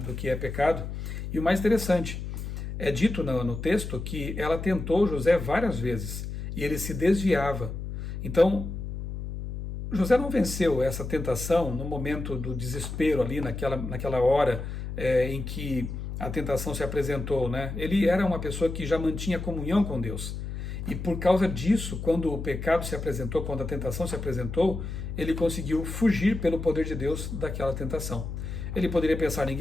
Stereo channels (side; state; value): left; noise; hum, 6 dB below the sound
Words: que é pecado. E o mais interessante, é dito no texto que ela tentou José várias vezes e ele se desviava. Então, José não venceu essa tentação no momento do desespero ali, naquela hora em que a tentação se apresentou, Ele era uma pessoa que já mantinha comunhão com Deus. E por causa disso, quando o pecado se apresentou, quando a tentação se apresentou, ele conseguiu fugir pelo poder de Deus daquela tentação. Ele poderia pensar,